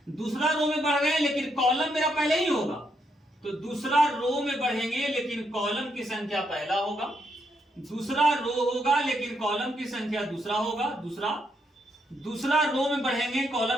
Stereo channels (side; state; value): both; normal; correlation 0.77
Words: दूसरा रो में बढ़ रहे हैं, लेकिन कॉलम मेरा पहले ही होगा, तो दूसरा रो में बढ़ेंगे लेकिन कॉलम की संख्या पहला होगा, दूसरा रो होगा लेकिन कॉलम की संख्या दूसरा होगा, दूसरा रो में बढ़ेंगे,